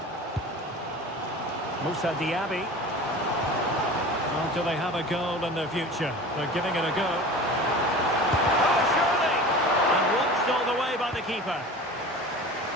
Moussa Diaby. Oh, do they have a goal in their future? They're giving it a go. Oh, surely! And watched all the way by the keeper.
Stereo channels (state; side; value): normal; both; correlation 0.37